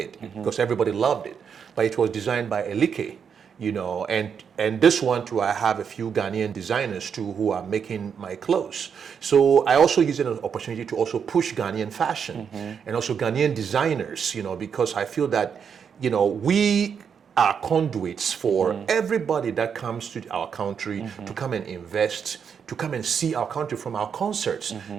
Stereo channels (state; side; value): quieter; left; 7.0 dB